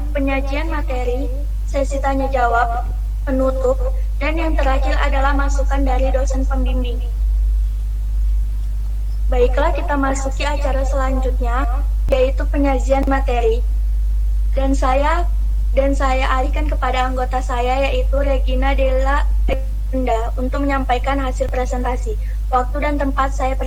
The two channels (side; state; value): both; identical; correlation 1.00